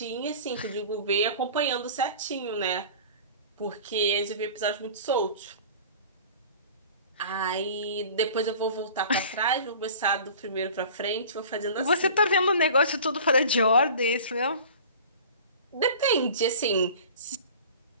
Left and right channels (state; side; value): inverted; both; correlation -0.41